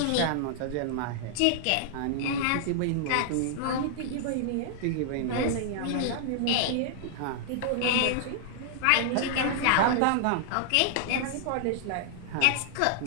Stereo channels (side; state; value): both; different; correlation -0.01